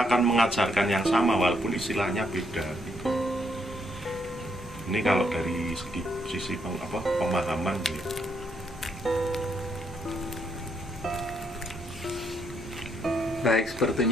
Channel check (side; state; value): both; normal; correlation 0.75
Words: mengajarkan yang sama walaupun istilahnya beda gitu. Ini kalau dari sisi pemahaman gitu. Baik,